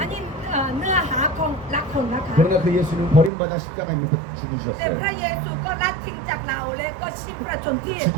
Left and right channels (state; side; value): drops out; left; at 3.3 s